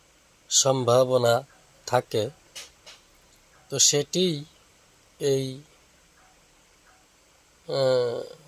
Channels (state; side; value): identical; both; correlation 1.00